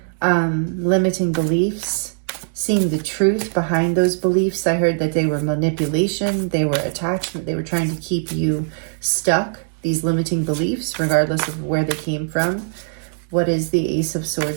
limiting beliefs, seeing the truth behind those beliefs. I heard that they were manipulation, they were attachment, they were trying to keep you stuck, these limiting beliefs, regardless of where they came from. What is the Ace of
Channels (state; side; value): silent; left; 65 dB below the other